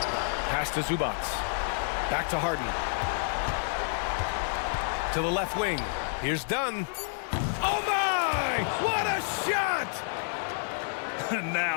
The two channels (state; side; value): silent; right; digital silence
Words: Pass to Zubac. Back to Harden. To the left wing. Here's Dunn. Oh my! What a shot!